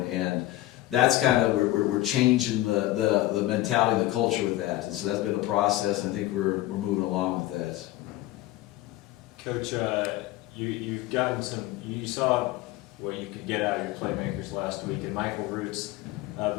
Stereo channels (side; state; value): right; quieter; 16.4 dB